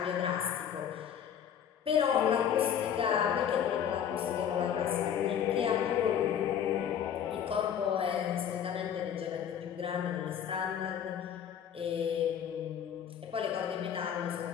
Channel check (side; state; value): right; quieter; 8.8 dB